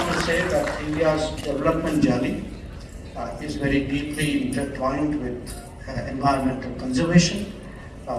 India's development journey is very deeply intertwined with environmental conservation.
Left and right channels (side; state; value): both; identical; correlation 1.00